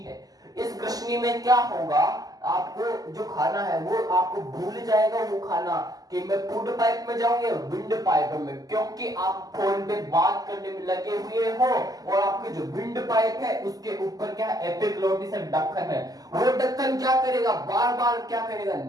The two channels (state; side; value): late; left; 0.18 ms